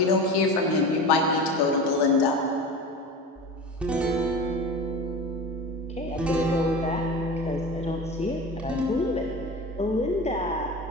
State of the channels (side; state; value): both; normal; correlation 0.31